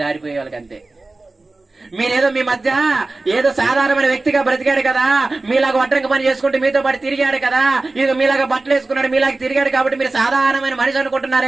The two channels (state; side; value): quieter; left; 3.2 dB